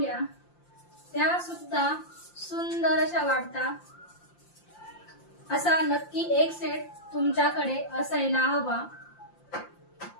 त्या सुद्धा सुंदर अशा वाटतात। असा नक्की एक सेट तुमच्याकडे असायला हवा।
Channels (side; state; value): right; late; 5.8 ms